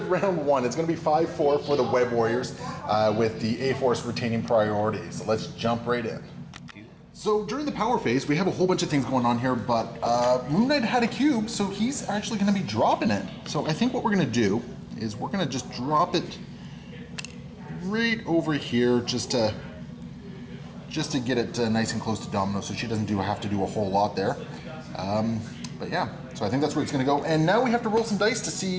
round 1, it's going to be 5-4 for the Web Warriors, with the A-Force retaining priority. So let's jump right in. So during the power phase, we have a whole bunch of things going on here, but Moon Knight had a cube, so he's actually going to be dropping it. So I think what we're going to do is we're going to just drop it right over here, just to get it nice and close to Domino, so she doesn't have to do a whole lot there. But yeah, so I think that's where it's going to go. And now we have to roll some dice to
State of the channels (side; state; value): both; identical; correlation 1.00